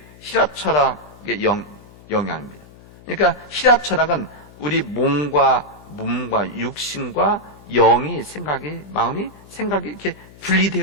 히랍 철학의 영향입니다. 그러니까 히랍 철학은 우리 몸과 육신과 영이, 마음이 이렇게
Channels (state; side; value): noise; left; hum, 22 dB below the sound